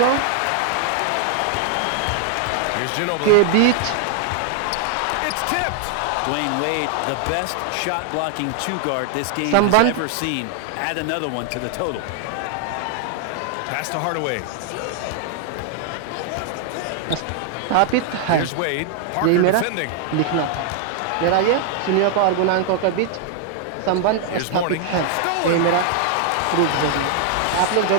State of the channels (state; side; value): different; both; correlation 0.00